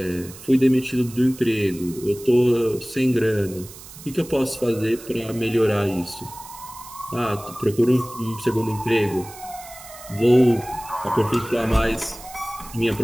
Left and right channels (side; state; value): right; noise; hiss, 17 dB below the sound